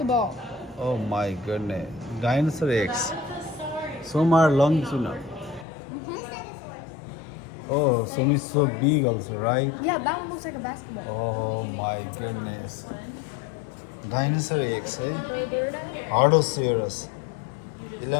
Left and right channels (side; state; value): right; drops out; at 5.7 s